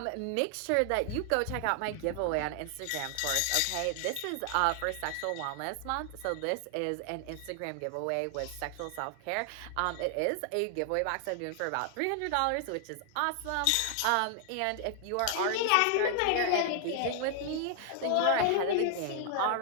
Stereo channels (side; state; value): both; different; correlation 0.00